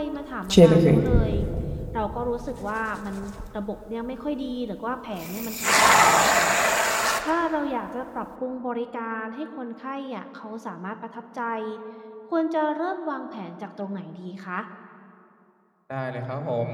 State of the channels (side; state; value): both; identical; correlation 1.00